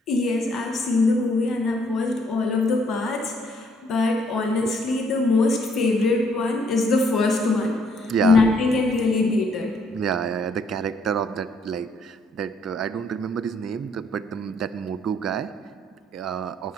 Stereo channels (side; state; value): both; normal; correlation 0.67